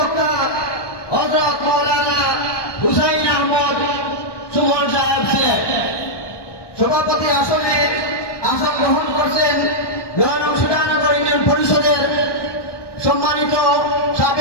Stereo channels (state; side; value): late; right; 1.2 ms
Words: হযরত মাওলানা হুসাইন আহমদ সুমন সাহেব ছিলেন। সভাপতি আসনে আসন গ্রহণ করছেন নয়নং সুজানগর ইউনিয়ন পরিষদের সম্মানিত